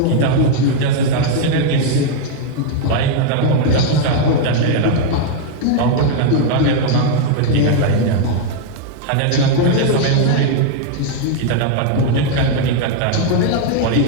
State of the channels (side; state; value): both; different; correlation 0.00